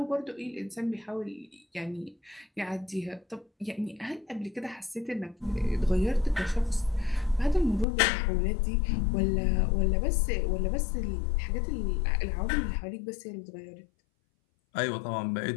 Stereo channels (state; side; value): drops out; right; at 7.9 s